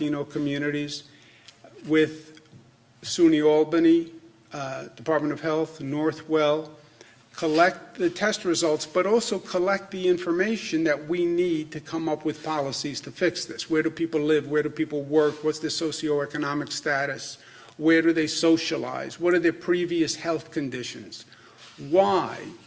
communities. With SUNY Albany, Department of Health, Northwell, collect the test results, but also collect the information that we need to come up with policies to fix this. Where do people live? Where do people work? What's their socioeconomic status? Where do they socialize? What are their previous health conditions? Why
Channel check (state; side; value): identical; both; correlation 1.00